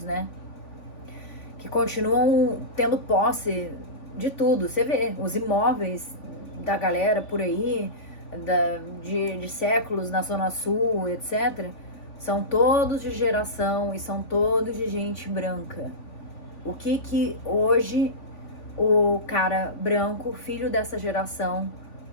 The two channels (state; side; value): late; right; 3.5 ms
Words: né? Que continuam tendo posse de tudo. Você vê, os imóveis da galera por aí, de séculos na Zona Sul, etc., são todos de geração e são todos de gente branca. O que hoje o cara branco, filho dessa geração,